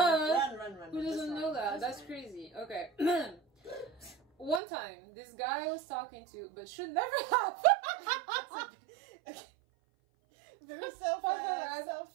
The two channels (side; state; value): left; drops out; at 4.6 s